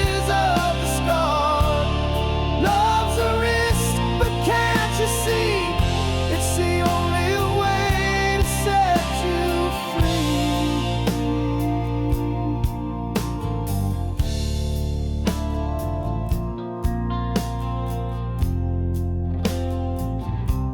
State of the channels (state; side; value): identical; both; correlation 1.00